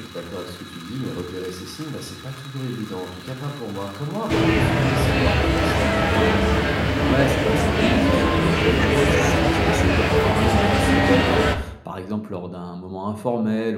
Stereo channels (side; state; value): both; identical; correlation 1.00